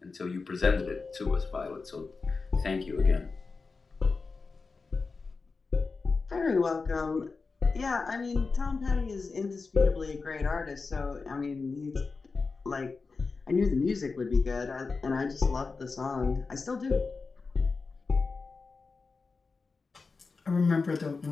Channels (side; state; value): right; quieter; 4.3 dB